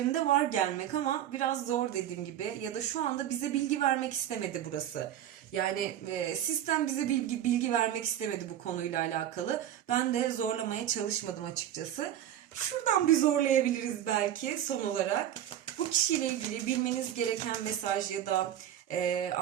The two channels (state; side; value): quieter; left; 11.1 dB